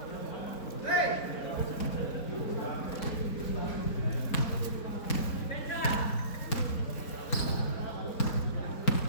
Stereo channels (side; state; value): right; late; 4.0 ms